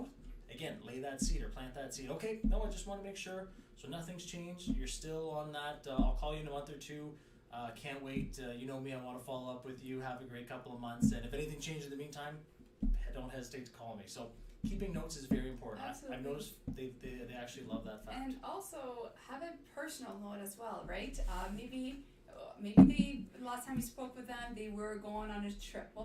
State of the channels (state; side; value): identical; both; correlation 1.00